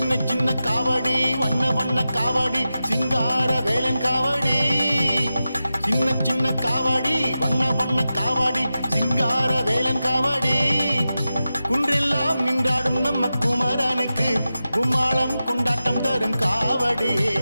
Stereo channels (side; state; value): both; inverted; correlation -0.92